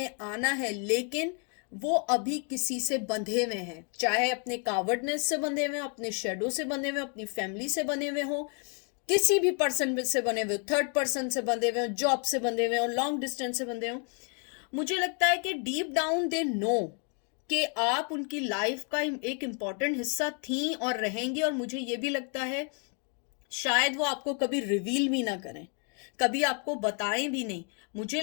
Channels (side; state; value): right; quieter; 39.3 dB